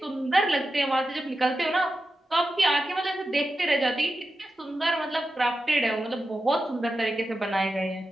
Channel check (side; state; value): both; normal; correlation 0.90